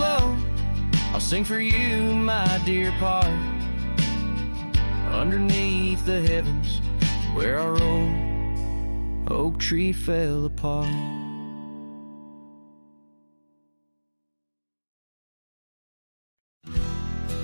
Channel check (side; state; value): both; inverted; correlation -1.00